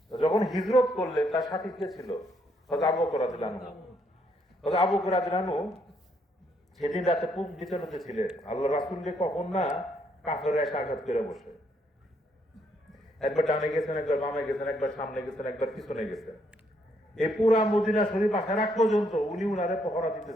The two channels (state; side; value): normal; both; correlation 0.73